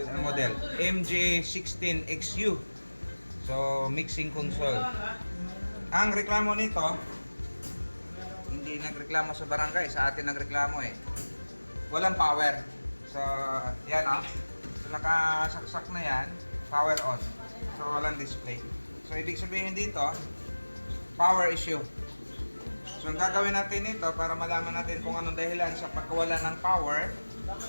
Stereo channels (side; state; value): both; inverted; correlation -1.00